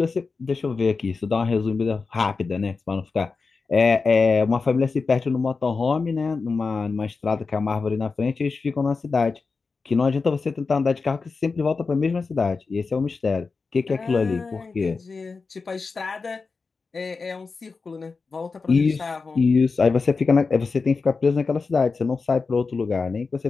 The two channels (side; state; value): right; quieter; 4.4 dB